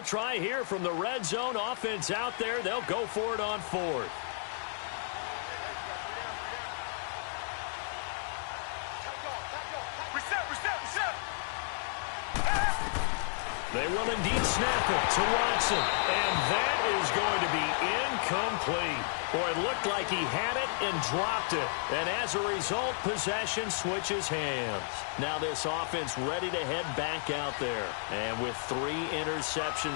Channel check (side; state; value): right; silent; 56 dB below the other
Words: try here from the red zone offense out there. They'll go for it on 4th. They will indeed snap it to Watson. And that is going to be incomplete. Boy, it looked like he had it and dropped it. And as a result, possession switches hands. Now this offense ready to head back out there. And with 3